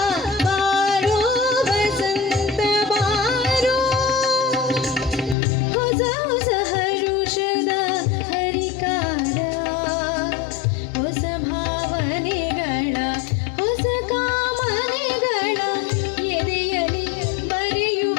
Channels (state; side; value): drops out; right; at 5.4 s